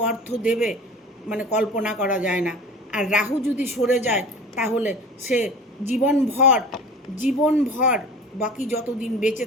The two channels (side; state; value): both; normal; correlation 0.39